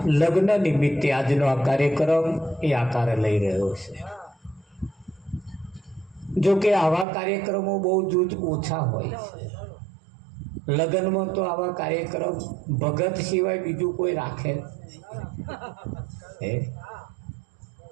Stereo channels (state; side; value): drops out; left; at 7.1 s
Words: લગ્ન નિમિત્તે આજનો આ કાર્યક્રમ એ આકાર લઈ રહ્યો છે। જો કે આવા કાર્યક્રમો બહુ જ ઓછા હોય છે। લગ્નમાં તો આવા કાર્યક્રમ ભગત સિવાય બીજું કોઈ રાખે